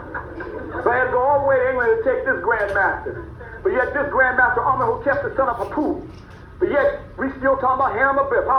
So I had to go all the way to England to take this Grand Master. But yet this Grand Master, Amenhotep, the son of Hapu. But yet, we still talking about Hiram Abib.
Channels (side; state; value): both; identical; correlation 1.00